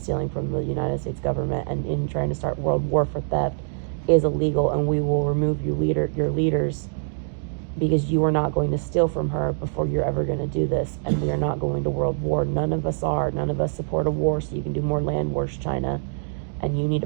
from the United States government, and in trying to start world war for theft is illegal, and we will remove your leaders, because you are not going to steal from her before you're ever going to do this, and we are not going to world war. None of us are. None of us support a war so you can do more land wars, China, and you need to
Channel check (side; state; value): left; silent; digital silence